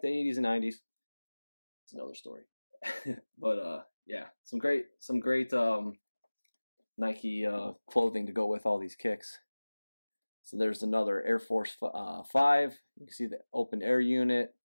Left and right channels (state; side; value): inverted; both; correlation -1.00